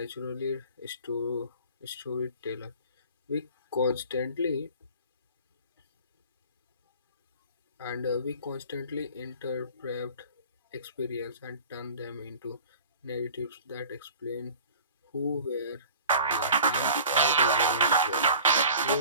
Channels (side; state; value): both; inverted; correlation -0.43